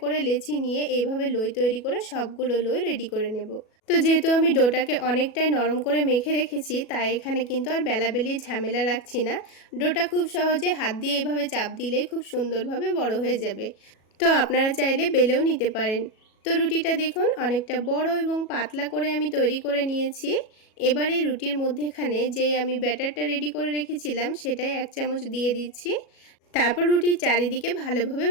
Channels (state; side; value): late; right; 37 ms